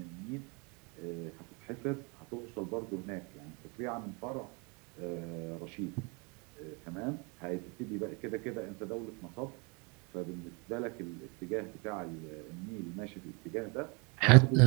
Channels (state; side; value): quieter; left; 31.3 dB